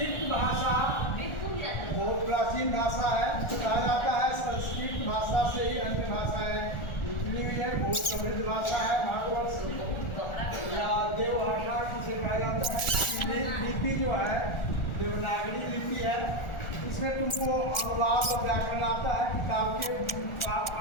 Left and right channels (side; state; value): right; late; 1.4 ms